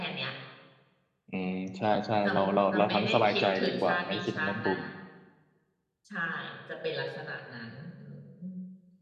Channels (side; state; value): both; identical; correlation 1.00